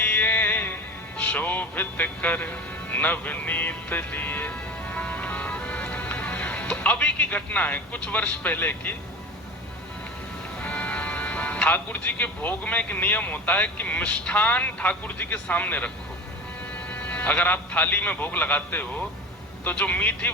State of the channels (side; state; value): both; normal; correlation 0.32